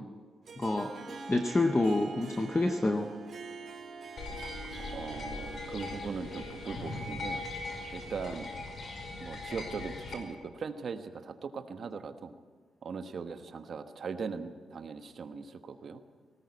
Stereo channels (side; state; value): both; normal; correlation 0.87